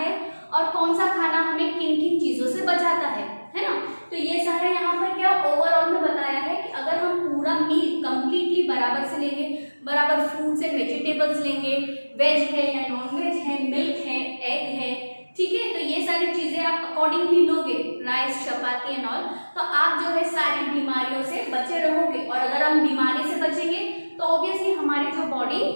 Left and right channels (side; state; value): both; inverted; correlation -1.00